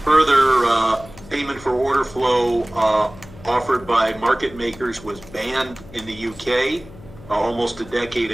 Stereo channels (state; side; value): noise; left; hum, 19 dB below the sound